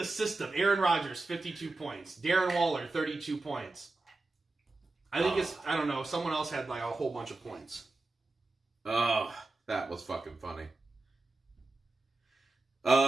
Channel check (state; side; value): quieter; left; 3.2 dB